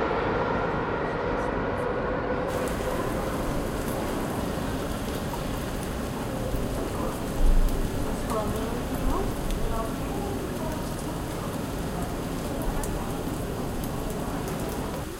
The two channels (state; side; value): identical; both; correlation 1.00